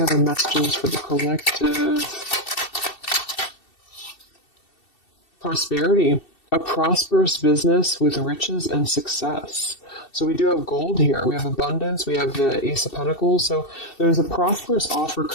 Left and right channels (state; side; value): late; right; 2.7 ms